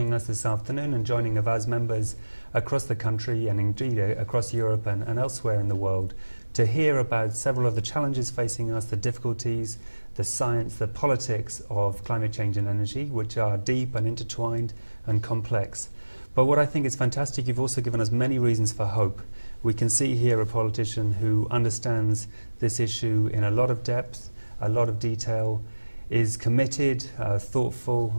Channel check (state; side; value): inverted; both; correlation -1.00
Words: us this afternoon and joining Avaaz members across the country and indeed across Europe and elsewhere in the world to hear about several of the challenges facing us, the difficulties, the science, the politics of climate change and energy, which are deep and intertwined and complex. But what I think is fantastic, you've also given us many reasons for hope. We can see here a politician who understands this issue in a lot of depth, a lot of detail, is committed,